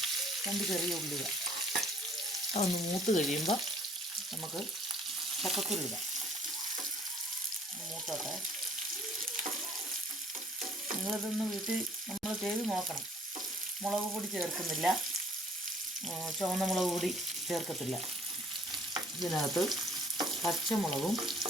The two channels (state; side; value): normal; both; correlation 0.57